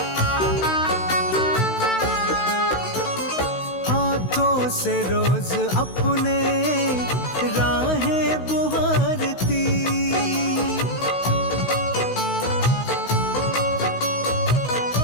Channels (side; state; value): right; late; 16 ms